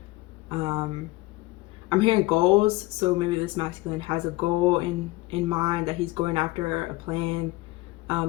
I'm hearing goals, so maybe this masculine has a goal in mind that he's going after, a plan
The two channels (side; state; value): right; quieter; 20.2 dB